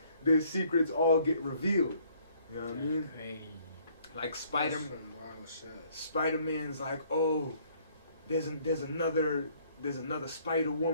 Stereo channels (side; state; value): both; inverted; correlation -0.62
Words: their secrets all get revealed. You know what I mean? Crazy. Like Spider-Man's like, oh, there's another Spider